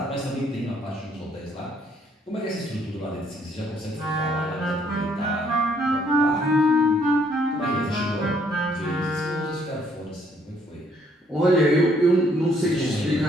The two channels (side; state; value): both; normal; correlation 0.66